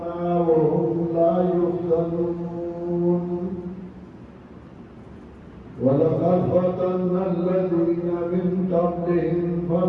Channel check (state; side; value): identical; both; correlation 1.00